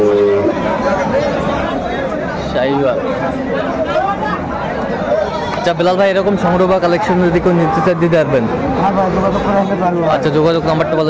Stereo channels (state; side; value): identical; both; correlation 1.00